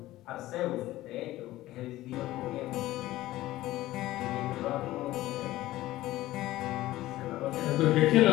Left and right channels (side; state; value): right; quieter; 16.2 dB